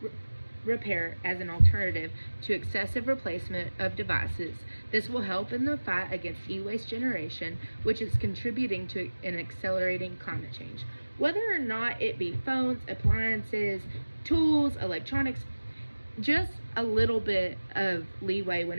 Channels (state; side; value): inverted; both; correlation -1.00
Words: repair as an alternative to excessive replacement of devices. This will help in the fight against e-waste generation, which is contributing to an accelerating climate change. Whether or not it be phones, appliances, tools, electronics, just a little bit of leeway when